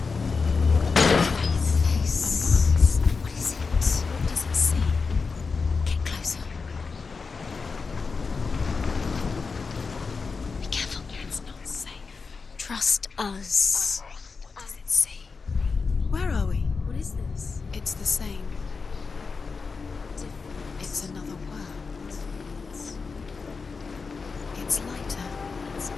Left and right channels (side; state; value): right; quieter; 4.7 dB